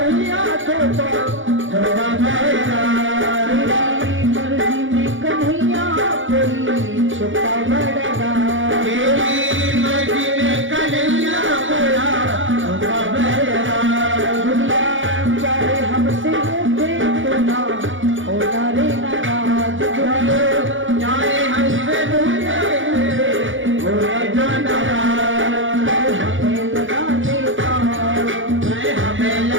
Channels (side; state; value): left; late; 0.57 ms